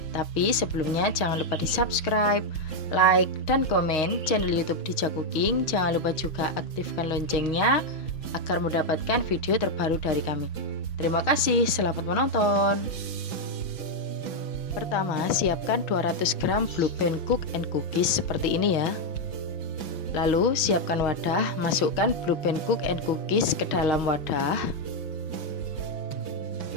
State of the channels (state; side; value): late; right; 6.0 ms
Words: Tapi sebelumnya jangan lupa di subscribe, like, dan komen channel YouTube Dija Cooking. Jangan lupa juga aktifkan loncengnya agar mendapatkan video terbaru dari kami. Terima kasih, selamat menonton. Pertama, siapkan 200 gram Blue Band Cook and Cookies seperti ini ya. Lalu siapkan wadah, masukkan Blue Band Cook and Cookies ke dalam wadah.